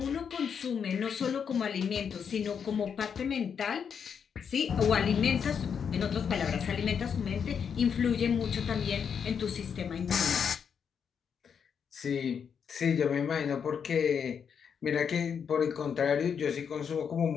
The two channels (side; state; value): right; quieter; 7.1 dB